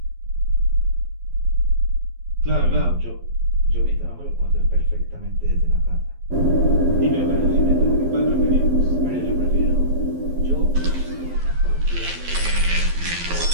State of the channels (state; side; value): late; left; 12 ms